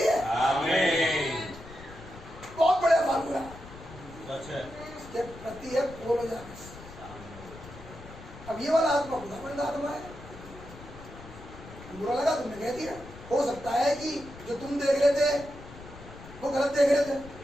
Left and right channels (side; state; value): left; noise; rumble, 16 dB below the sound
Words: आमीन। बहुत बड़ा फार्मूला। अच्छा, इसके प्रति है पूर्ण जागृति। अब ये वाला आत्मा खुदावंद आत्मा है। बुरा लगा तुमने कह दिया, हो सकता है कि जो तुम देख रहे थे वो गलत देख रहे थे।